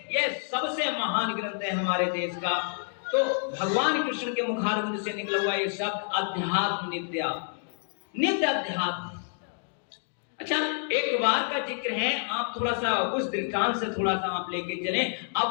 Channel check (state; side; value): silent; right; digital silence